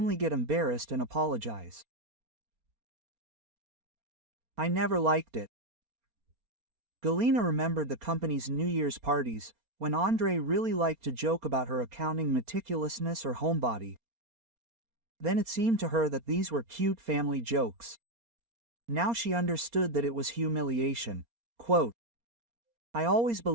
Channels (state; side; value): late; left; 4.3 ms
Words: get embarrassed and apologize. I never liked it. Galina remembered the company's New Year's parties, when Andrei really liked to joke about her accounting meticulousness or homebody. Then it seemed to her that these were cute family jokes. Now she understood that it was humiliation. Quote, I always